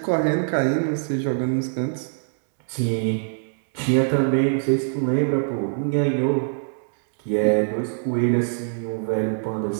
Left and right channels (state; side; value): silent; left; digital silence